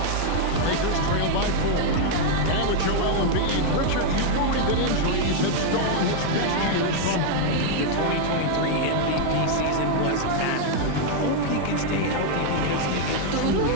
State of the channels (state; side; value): different; both; correlation 0.00